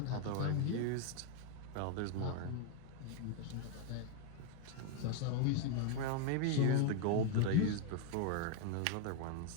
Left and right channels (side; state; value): both; different; correlation 0.00